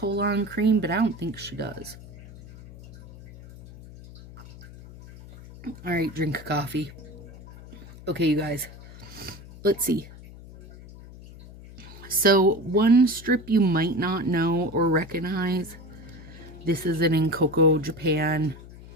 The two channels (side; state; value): left; noise; hum, 17 dB below the sound